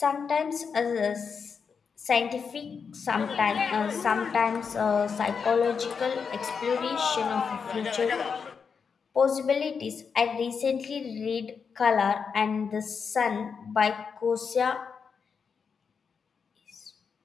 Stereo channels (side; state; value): right; quieter; 6.0 dB